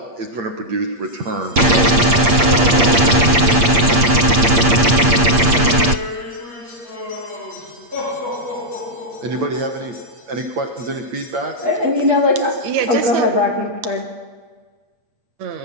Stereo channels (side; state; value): left; late; 8.6 ms